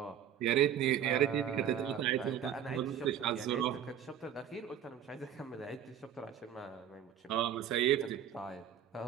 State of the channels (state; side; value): quieter; left; 9.5 dB